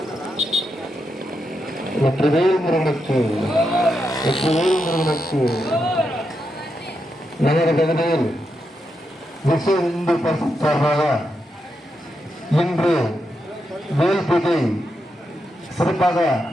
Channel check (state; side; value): normal; both; correlation 0.84